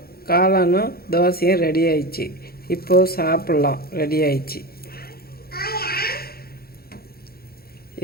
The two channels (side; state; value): right; late; 0.44 ms